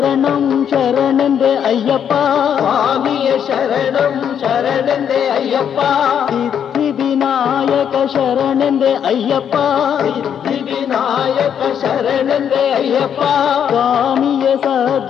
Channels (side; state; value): right; quieter; 8.5 dB